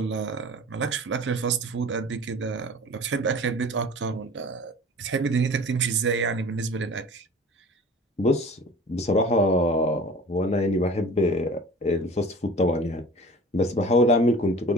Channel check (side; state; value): both; normal; correlation 0.42